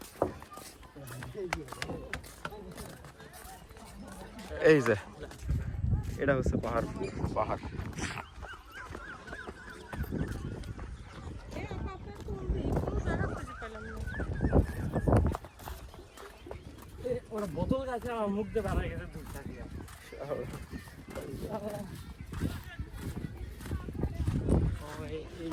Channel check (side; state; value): both; identical; correlation 1.00